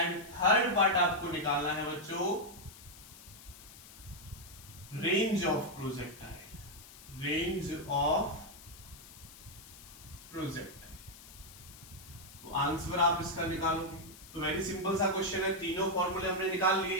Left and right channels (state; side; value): noise; left; hiss, 18 dB below the sound